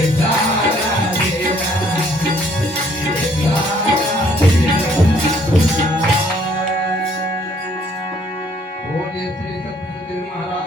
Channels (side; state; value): both; normal; correlation 0.63